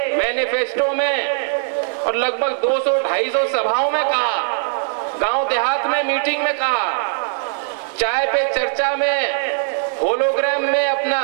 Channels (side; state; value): left; silent; digital silence